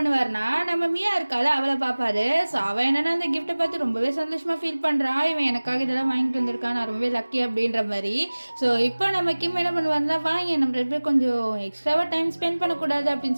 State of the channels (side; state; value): both; inverted; correlation -1.00